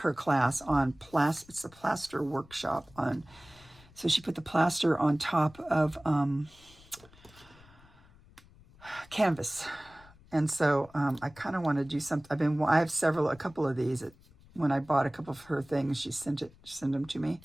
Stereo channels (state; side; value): noise; left; rumble, 25 dB below the sound